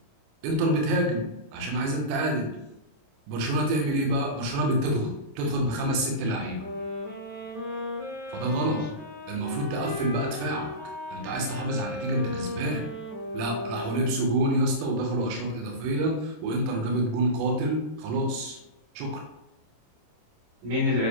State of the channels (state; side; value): late; left; 26 ms